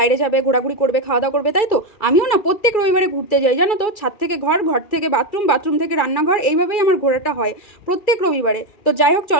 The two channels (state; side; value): late; right; 2.3 ms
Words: যাবে, ঘোরাঘুরি করবে, খাওয়া দাওয়া করবে, তাই তো? আমিও না প্রত্যেক রবিবারে ঘুরতে যাই, জানো তো। ছাদ থেকে ঘর, ঘর থেকে বাথরুম, বাথরুম থেকে রান্নাঘর, এইভাবেই আমার ঘোরাটা হয় প্রত্যেক রবিবারে। তো যাই হোক,